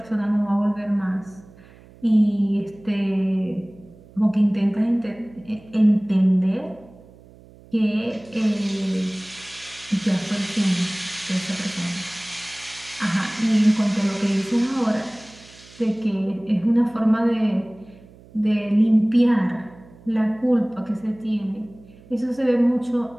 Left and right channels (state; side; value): noise; right; hum, 24 dB below the sound